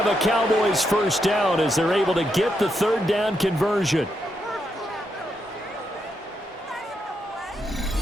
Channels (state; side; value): normal; both; correlation 0.81